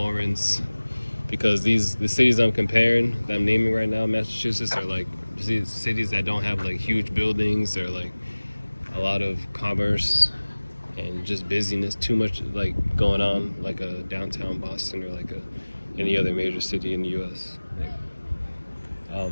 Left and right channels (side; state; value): both; inverted; correlation -1.00